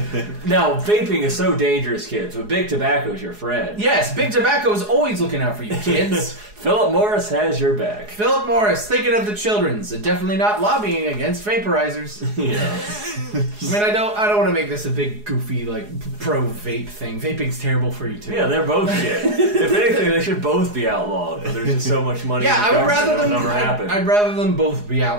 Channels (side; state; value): left; late; 4.8 ms